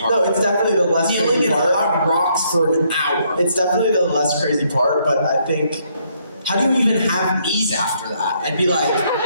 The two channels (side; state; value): both; inverted; correlation -0.71